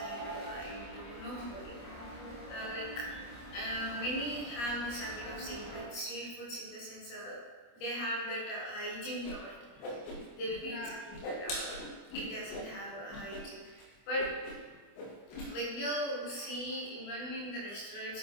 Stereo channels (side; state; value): right; late; 25 ms